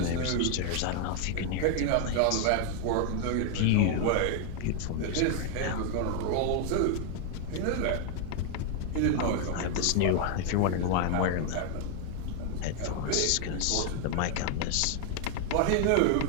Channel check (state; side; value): different; both; correlation 0.00